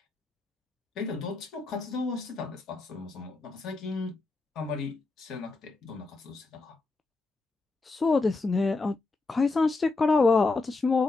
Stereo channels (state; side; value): quieter; right; 3.6 dB